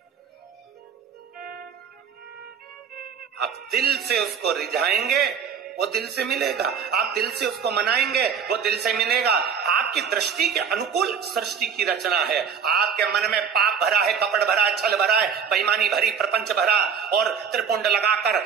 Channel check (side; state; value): left; quieter; 7.0 dB